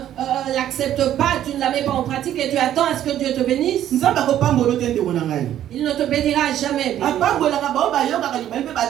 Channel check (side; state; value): left; quieter; 11.5 dB